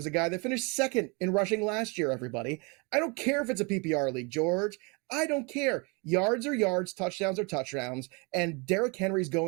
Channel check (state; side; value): quieter; left; 30.4 dB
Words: a guy that finished second in rushing last year, everybody. I don't care if it's a PPR league, George. I don't care. Yards are yards, touchdowns are touchdowns, and Derrick Henry's